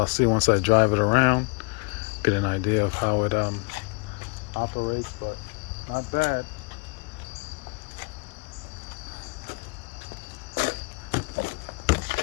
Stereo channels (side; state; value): right; quieter; 32.6 dB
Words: see once I drive it around, get an idea of how it operates, but not bad.